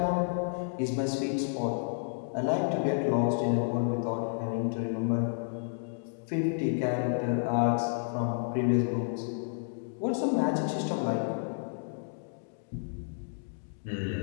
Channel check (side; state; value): right; silent; digital silence